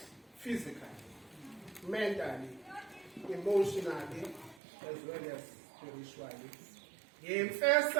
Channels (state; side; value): drops out; left; at 4.6 s